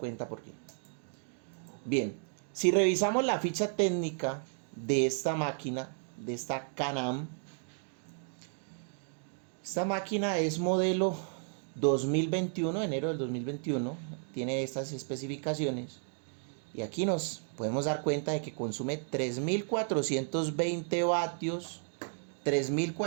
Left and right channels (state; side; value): silent; left; 56 dB below the other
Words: por qué. Bien, si revisamos la ficha técnica de esta máquina, de esta Can-Am, esta máquina es modelo 2021, enero del 2021, tiene estas especificaciones. Y aquí nos podemos dar cuenta de que consume 3.420 vatios,